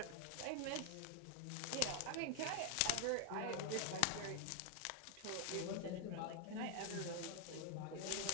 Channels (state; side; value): different; both; correlation 0.00